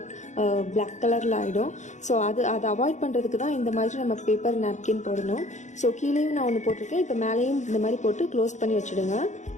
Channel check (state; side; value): late; right; 0.35 ms